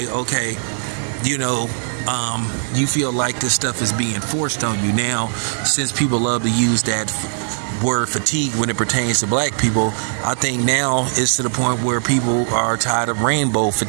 okay, you feel like this stuff is being forced on you. Now, since people love to use that word fatigue when it pertains to black people, I think now it's to the point where people are tired of rainbow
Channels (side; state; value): left; silent; 65 dB below the other